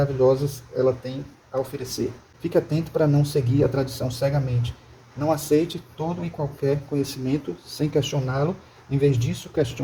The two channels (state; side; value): identical; both; correlation 1.00